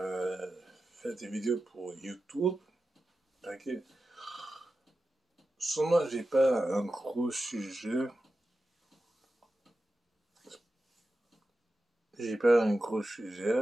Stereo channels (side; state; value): both; normal; correlation 0.92